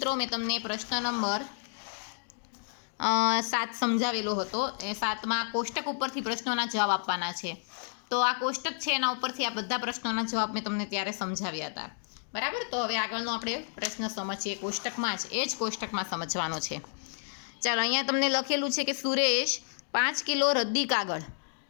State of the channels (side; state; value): right; silent; digital silence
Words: મેં તમને પ્રશ્ન નંબર 7 સમજાવેલો હતો. એ 7માં કોષ્ટક ઉપરથી પ્રશ્નોના જવાબ આપવાના છે. તો આ કોષ્ટક છે, એના ઉપરથી આ બધા પ્રશ્નોના જવાબ મેં તમને ત્યારે સમજાવ્યા હતા. બરાબર. તો હવે આગળનો આપણે પ્રશ્ન સમજીએ. કોષ્ટકમાં જ એ જ કોષ્ટકમાં સમજવાનો છે. ચાલો, અહીંયા તમને લખેલું છે કે સુરેશ 5 કિલો રદ્દી કાગળ,